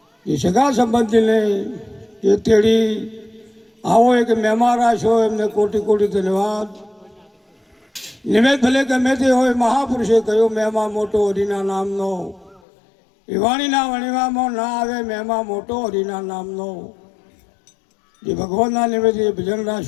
जे सगा संबंधी ने जे तेड़ी आओ एक मेहमान राशो एमने कोटि कोटि धन्यवाद। निमित्त भले गमे ते होय महापुरुषे कहो मेहमा मोटो हरिना नामनो विवाणीना वणीमां ना आवे मेहमा मोटो हरिना नामनो जे भगवानना निमित्ते भजन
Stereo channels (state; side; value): drops out; right; at 12.6 s